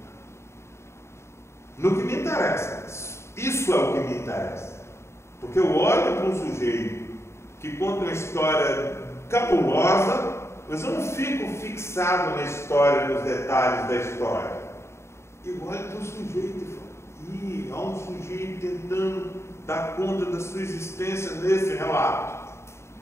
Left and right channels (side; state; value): right; late; 0.13 ms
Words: No que me interessa. Isso é o que me interessa. Porque eu olho para um sujeito que conta uma história cabulosa, mas eu não fico fixado na história, nos detalhes da história. Eu olho para o sujeito e falo, há um sujeito tentando dar conta da sua existência nesse relato.